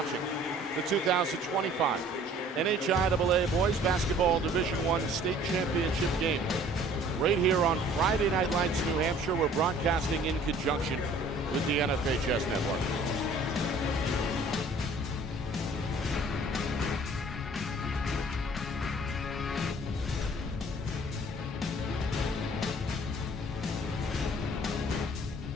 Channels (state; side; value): normal; both; correlation 0.53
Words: the 2025 NHIAA Boys Basketball Division I State Championship game. Right here on Friday Night Lights, New Hampshire. We're broadcasting in conjunction with the NFHS Network.